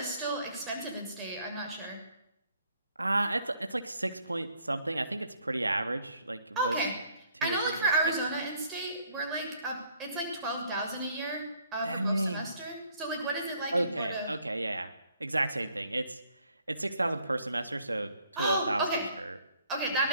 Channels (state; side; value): inverted; both; correlation -0.65